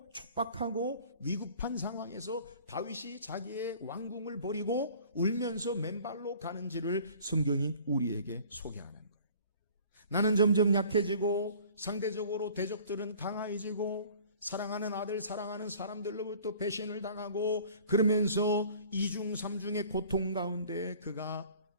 촉박하고 위급한 상황에서 다윗이 자기의 왕궁을 버리고 울면서 맨발로 가는지를 성경이 우리에게 소개하는 거예요. 나는 점점 약해지고 상대적으로 대적들은 강해지고 사랑하는 아들, 사랑하는 사람들로부터 배신을 당하고 그러면서 이중 삼중의 고통 가운데 그가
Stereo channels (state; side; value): inverted; both; correlation -0.49